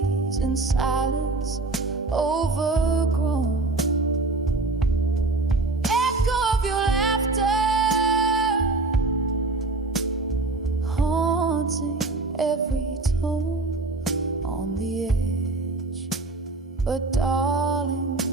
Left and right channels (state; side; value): quieter; left; 3.4 dB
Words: in silence overgrown. Echo of your laughter haunting every tone on the edge. But darling,